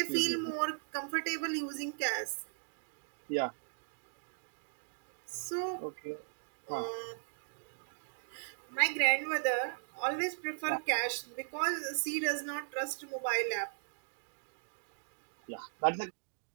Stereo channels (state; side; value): silent; left; digital silence